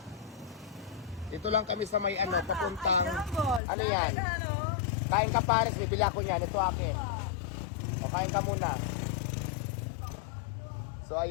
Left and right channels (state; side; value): drops out; right; at 3.6 s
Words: Dito lang kami sa may papuntang... Ano yan? Kain ka Paris, bibili ako niyan. Ito akin. Kain ka muna. So